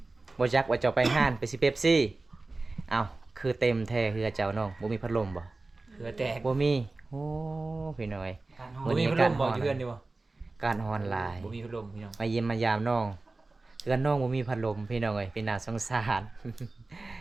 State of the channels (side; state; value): left; quieter; 3.3 dB